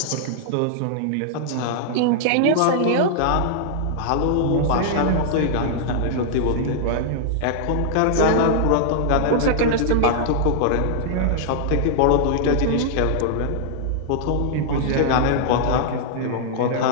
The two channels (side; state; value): both; different; correlation -0.01